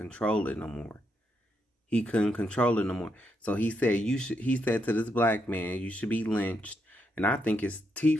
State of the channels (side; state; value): both; normal; correlation 0.80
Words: it no more. He couldn't control it no more. So he said he said to this black man, you should be lynched. And I think his